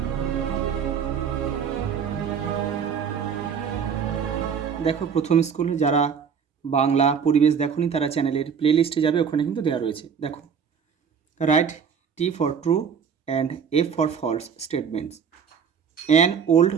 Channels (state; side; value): quieter; left; 6.9 dB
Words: দেখো, প্রথম স্কুল যারা বাংলা পরিবেশ দেখোনি তারা চ্যানেলের প্লে লিস্টে যাবে, ওখানে কিন্তু দেওয়া রয়েছে। দেখো, write T for true and F for false statements. An old